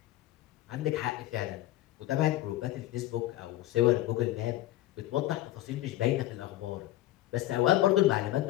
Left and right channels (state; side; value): quieter; right; 15.2 dB